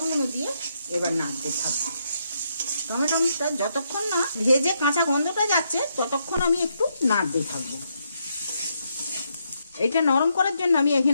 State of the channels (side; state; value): both; inverted; correlation -0.78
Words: দিয়ে এবার নাড়তে থাকবো। টমেটোটা যতক্ষণ না ভেজে কাঁচা গন্ধটা যাচ্ছে ততক্ষণ আমি একটু নাড়তে থাকবো। এইটা নরম করার জন্য আমি